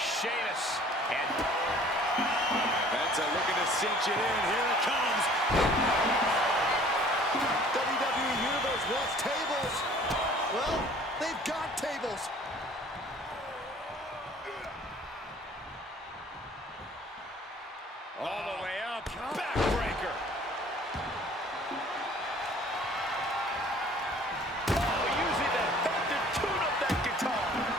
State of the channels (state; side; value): normal; both; correlation 0.52